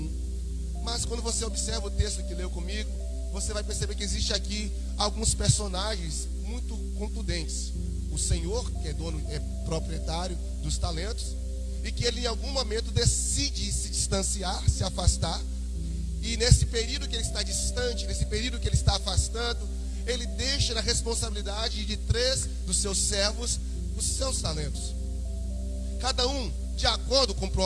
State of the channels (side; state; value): both; identical; correlation 1.00